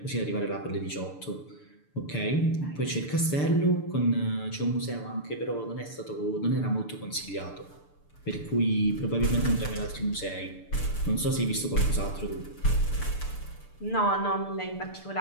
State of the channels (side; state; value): right; late; 6.8 ms